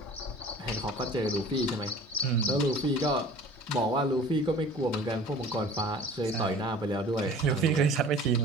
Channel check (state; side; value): normal; both; correlation 0.44